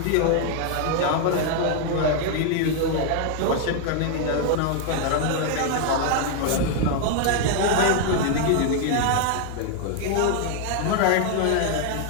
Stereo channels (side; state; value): both; different; correlation 0.00